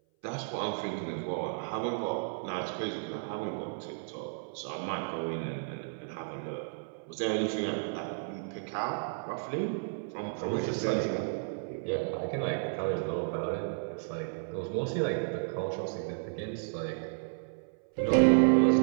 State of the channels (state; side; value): silent; left; 56 dB below the other